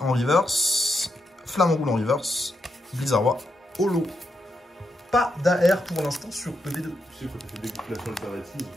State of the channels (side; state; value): both; normal; correlation 0.83